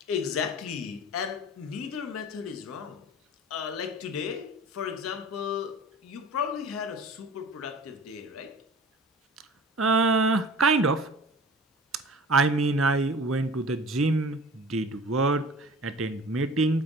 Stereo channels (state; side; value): normal; both; correlation 0.41